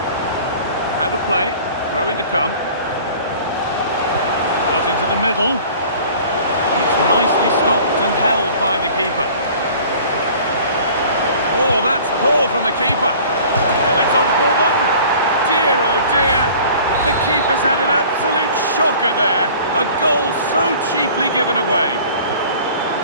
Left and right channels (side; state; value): both; inverted; correlation -0.47